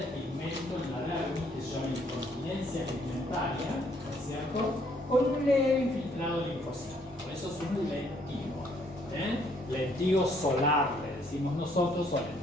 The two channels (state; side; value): normal; both; correlation 0.66